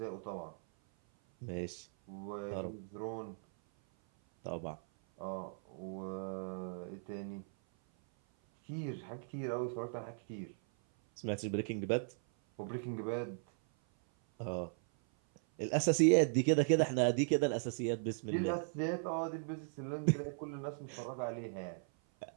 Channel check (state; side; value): silent; left; 53 dB below the other